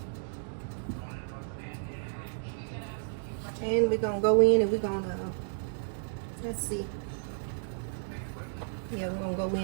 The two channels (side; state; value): left; silent; digital silence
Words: And we're gonna go in and we're gonna, let's see. Yeah, we're gonna go